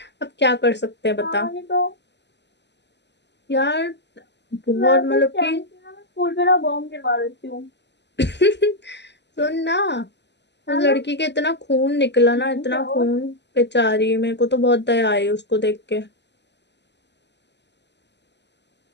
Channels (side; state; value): right; late; 0.50 ms